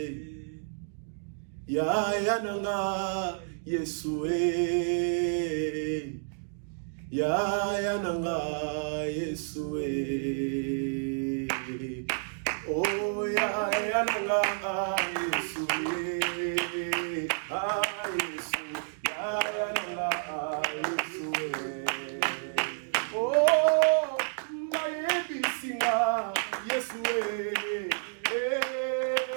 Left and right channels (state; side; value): silent; left; digital silence